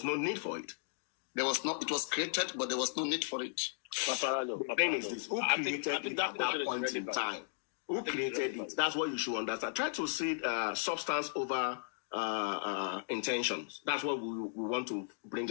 no need for it. It was created, but there was no need for it. The thing is this, who created it at that point in time? Who created it? That's what you should understand. Try to see substance over intentions. That's what we want to bring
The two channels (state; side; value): silent; right; digital silence